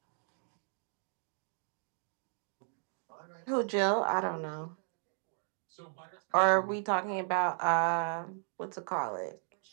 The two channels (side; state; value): left; silent; 54 dB below the other